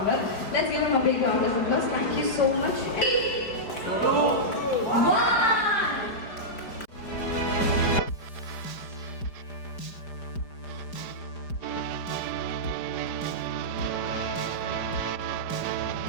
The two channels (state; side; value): late; right; 4.9 ms